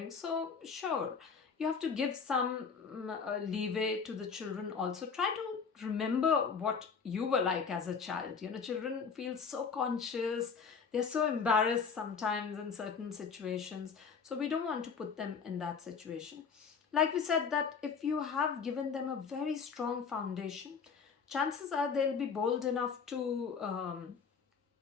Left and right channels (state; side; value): quieter; right; 5.9 dB